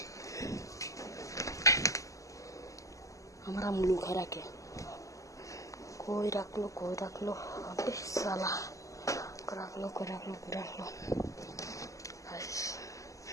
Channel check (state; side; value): late; right; 0.16 ms